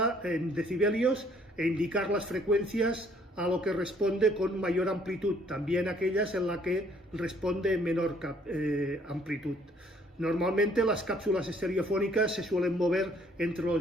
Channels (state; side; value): normal; both; correlation 0.62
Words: en decibelios e indicar las frecuencias a lo que responde con mayor amplitud, también aquellas en las que responde en menor amplitud. Normalmente las cápsulas estereofónicas se suelen mover entre